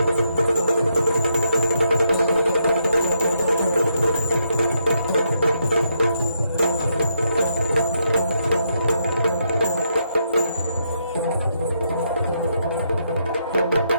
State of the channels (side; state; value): both; inverted; correlation -0.78